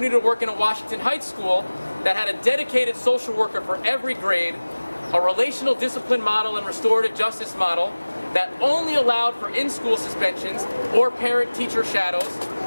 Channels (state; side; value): inverted; both; correlation -1.00